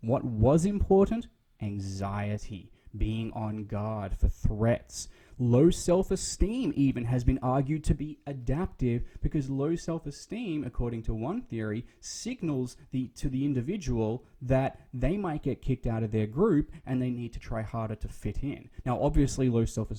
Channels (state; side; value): identical; both; correlation 1.00